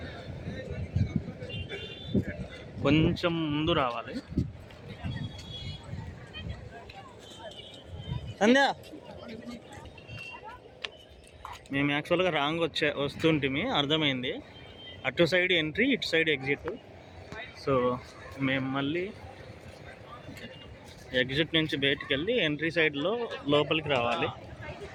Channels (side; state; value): both; identical; correlation 1.00